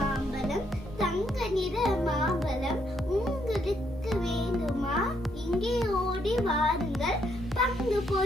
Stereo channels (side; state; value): both; normal; correlation 0.73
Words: தங்க நிற மாம்பழம் உங்களுக்கு வேண்டுமா இங்கே ஓடி வாருங்கள் பங்கு